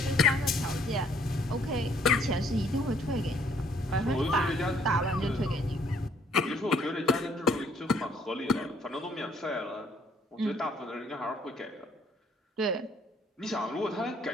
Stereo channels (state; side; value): normal; both; correlation 0.64